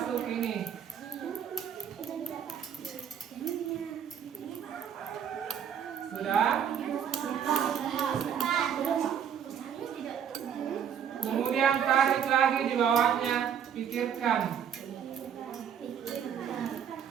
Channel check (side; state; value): left; quieter; 8.3 dB